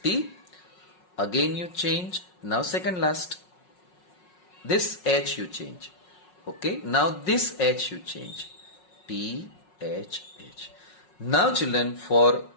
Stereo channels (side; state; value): right; late; 5.5 ms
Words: Again you change. Now second last. This H you change. Okay. Now this H you change. T, H, H. Now children, for